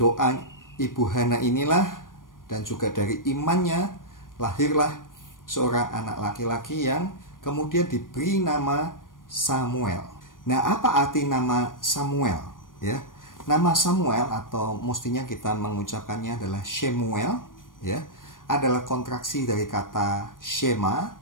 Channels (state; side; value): late; right; 0.90 ms